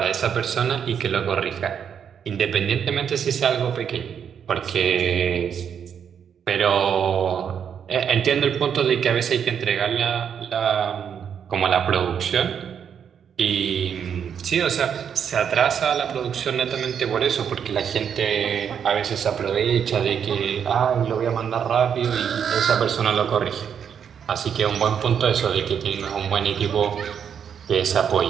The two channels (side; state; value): left; quieter; 7.9 dB